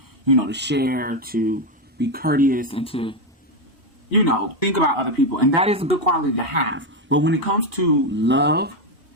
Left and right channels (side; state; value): both; normal; correlation 0.07